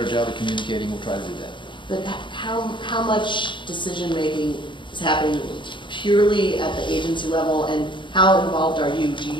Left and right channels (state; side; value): late; right; 0.23 ms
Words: job of communicating, we'll try to do that. But how much decision-making is happening purely at the agency level, and how involved are you? Do